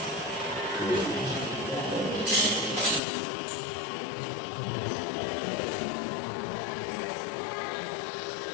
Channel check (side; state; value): right; drops out; at 3.0 s